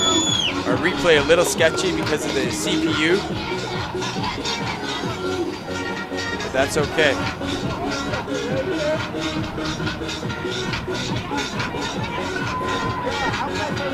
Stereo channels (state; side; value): identical; both; correlation 1.00